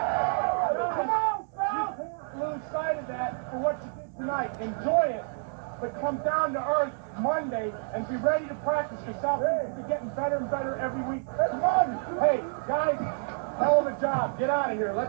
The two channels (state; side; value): silent; left; 59 dB below the other